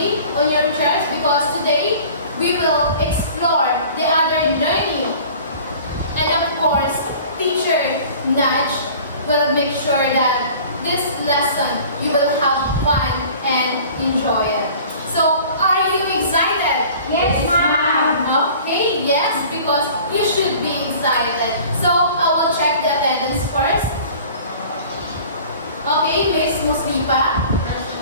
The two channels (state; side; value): inverted; both; correlation -0.46